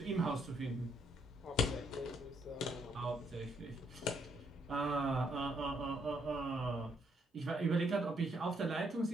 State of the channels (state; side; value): normal; both; correlation 0.72